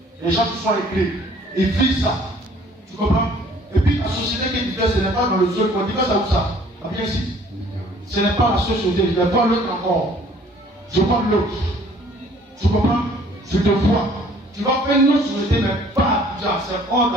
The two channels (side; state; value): both; normal; correlation 0.56